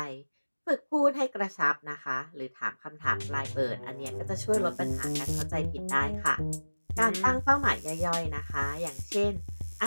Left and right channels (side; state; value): both; inverted; correlation -1.00